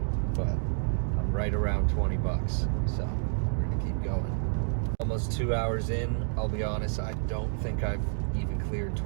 but I'm right around 20 bucks, so we're gonna keep going. Almost 2 hours in. I'll be honest, I don't think I've even cleared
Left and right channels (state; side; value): silent; left; digital silence